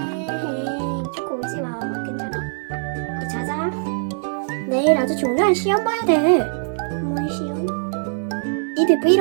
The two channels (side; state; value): left; silent; digital silence